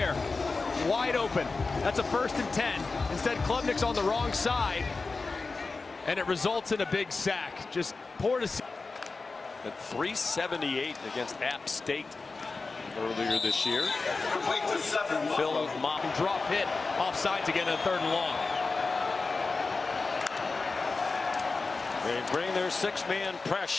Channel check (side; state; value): right; quieter; 4.0 dB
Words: Wide open. That's a 1st and 10. Instead, Klubnik's on the wrong side, and it results in a big sack. Just poor to see. At 378 against App State earlier this year. Phil Mott. Drop hit off sides again in 3rd and long. They bring their 6-man